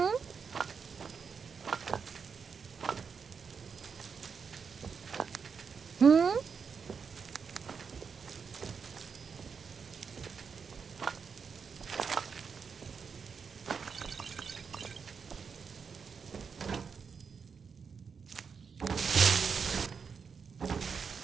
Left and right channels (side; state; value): left; quieter; 6.0 dB